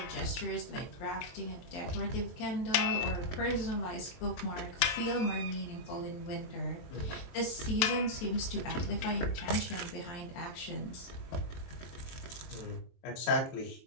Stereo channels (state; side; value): late; right; 24 ms